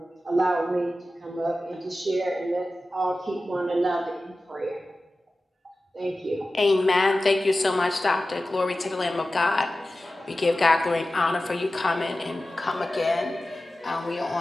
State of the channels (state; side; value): normal; both; correlation 0.95